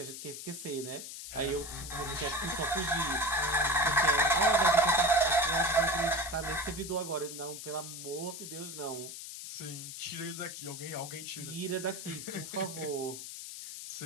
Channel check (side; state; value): left; noise; hiss, 10 dB below the sound